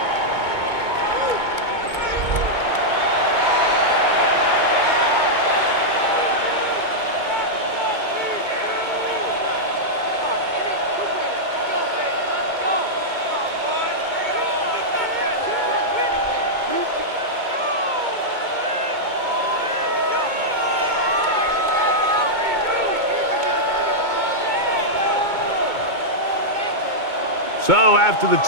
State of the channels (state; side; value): late; left; 2.2 ms